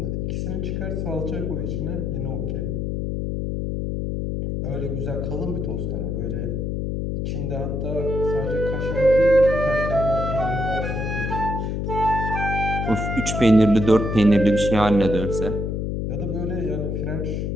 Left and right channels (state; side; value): noise; left; hum, 2 dB below the sound